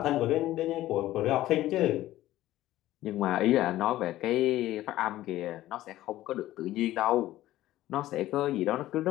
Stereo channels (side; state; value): right; quieter; 15.0 dB